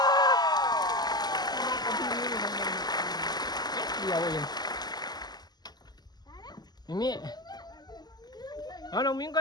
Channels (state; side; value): late; right; 0.20 ms